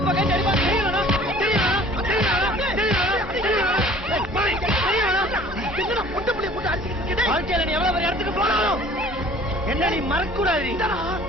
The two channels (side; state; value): both; normal; correlation 0.50